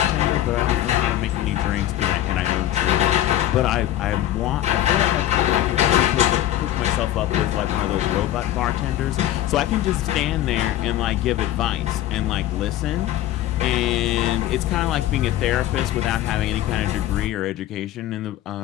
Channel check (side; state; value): right; quieter; 13.3 dB